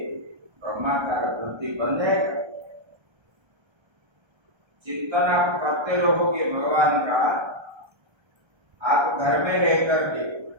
ब्रह्माकार वृत्ति बन जाएगा। चिंतन आप करते रहोगे भगवान का, आप घर में रह करके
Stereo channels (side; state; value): left; late; 1.3 ms